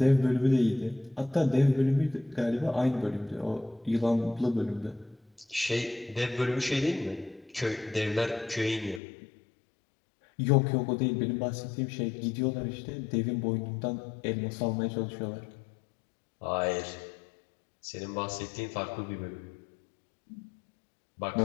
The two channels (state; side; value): drops out; right; at 9.0 s